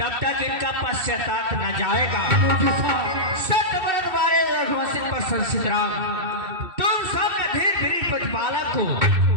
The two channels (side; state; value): left; late; 2.7 ms